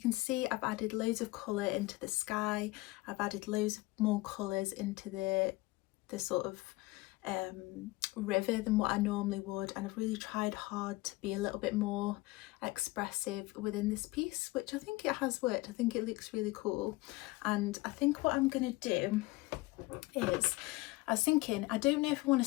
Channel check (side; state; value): right; quieter; 21.0 dB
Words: see I've added loads of colour into the sky. I've added loads of more colours into the sort of river than what I normally would, and I've really tried hard to be a little bit more expressive within this piece, which I think it has worked. I think it looks really cool, and I think what I'm going to do is, I was thinking, I don't know if I want